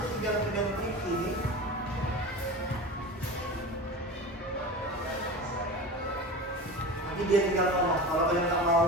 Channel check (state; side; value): normal; both; correlation 0.30